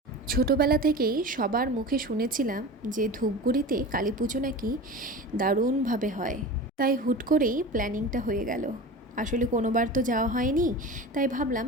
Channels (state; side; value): normal; both; correlation 0.32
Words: ছোটোবেলা থেকেই সবার মুখে শুনেছিলাম যে ধূপগুড়িতে কালী পুজো নাকি দারুণভাবে হয়, তাই হুট করেই প্ল্যানিংটা হয়ে গেল। আসলে কোনোবার তো যাওয়া হয়নি, তাই ভাবলাম